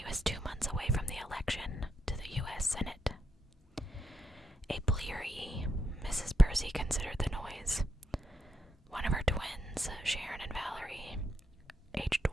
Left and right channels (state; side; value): normal; both; correlation 0.81